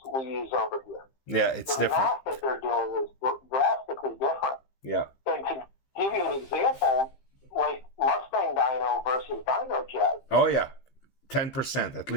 we use over here. Yeah, it's the different. math that they're doing is drastically different. Yeah. And to give you an example, like Mustang dyno versus dyno jet. Oh yeah, 10% at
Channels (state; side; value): late; right; 15 ms